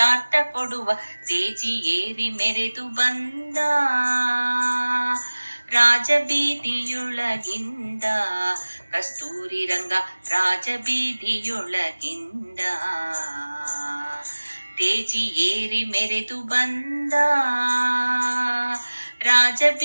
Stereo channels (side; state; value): both; inverted; correlation -1.00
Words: ಕೊಡುವ. ತೇಜಿ ಏರಿ ಮೆರೆದು ಬಂದ ರಾಜಬೀದಿಯೊಳಗಿಂದ, ಕಸ್ತೂರಿ ರಂಗ ರಾಜಬೀದಿಯೊಳಗಿಂದ. ತೇಜಿ ಏರಿ ಮೆರೆದು ಬಂದ